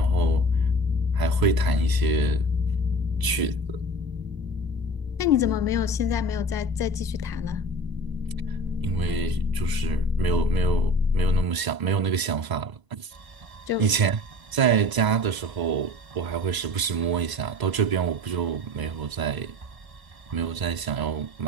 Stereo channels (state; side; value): late; left; 1.0 ms